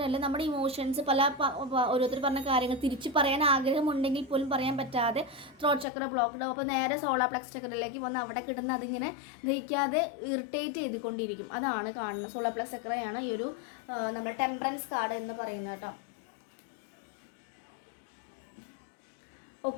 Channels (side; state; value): right; drops out; at 5.9 s